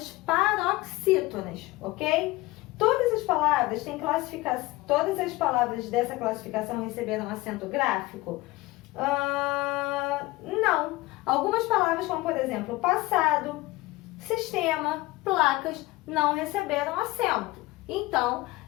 paroxítonas, ok? Todas as palavras têm classificação. Todas as palavras dessa classificação receberam acento gráfico? Não. Algumas palavras, como por exemplo, passado, sistema, placas, não receberam acento. Então,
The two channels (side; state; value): right; quieter; 19.9 dB